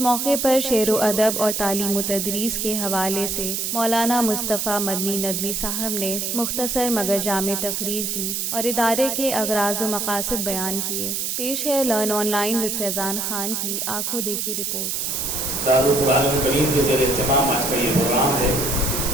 پر شعر و ادب اور تعلیم و تدریس کے حوالے سے مولانا مصطفیٰ مدنی ندوی صاحب نے مختصر مگر جامع تقریر کی اور ادارے کے اغراض و مقاصد بیان کیے۔ پیش ہے لرن آن لائن وذ فیضان خان کی آنکھوں دیکھی رپورٹ۔ دارالقرآن الکریم کے زیر اہتمام آج کا یہ پروگرام ہے۔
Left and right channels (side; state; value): right; noise; hiss, 1 dB below the sound